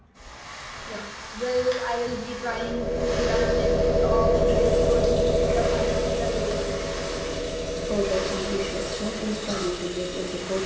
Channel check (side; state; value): both; identical; correlation 1.00